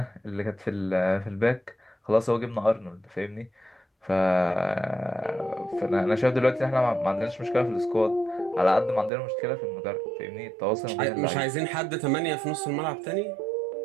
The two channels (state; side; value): drops out; left; at 9.1 s